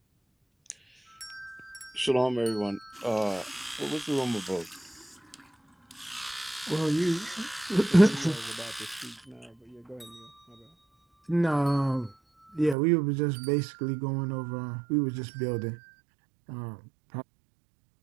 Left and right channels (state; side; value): drops out; left; at 12.8 s